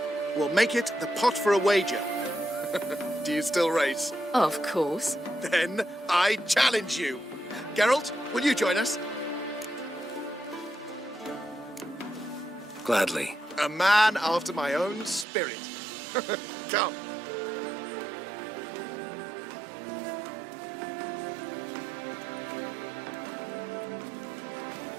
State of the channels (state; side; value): drops out; left; at 15.2 s